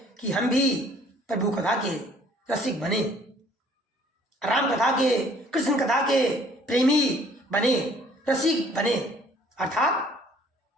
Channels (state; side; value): normal; both; correlation 0.57